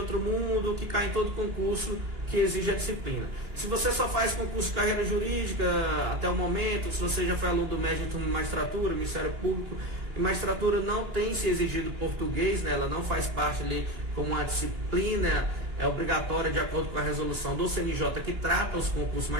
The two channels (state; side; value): late; left; 2.9 ms